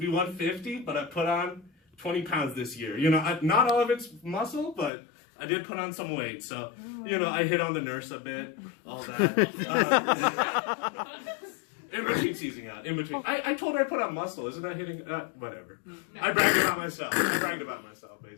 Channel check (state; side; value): drops out; right; at 4.9 s